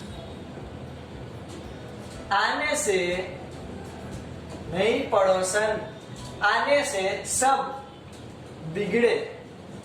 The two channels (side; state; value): both; identical; correlation 1.00